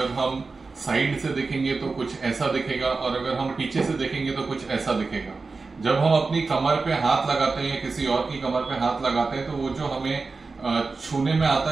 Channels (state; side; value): quieter; left; 4.1 dB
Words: हम साइड से देखेंगे तो कुछ ऐसा दिखेगा, और अगर हम पीछे से देखेंगे तो कुछ ऐसा दिखेगा। जब हम अपनी कमर पे हाथ लगाते हैं या किसी और की कमर पे हाथ लगाते हैं तो वो जो हमें छूने में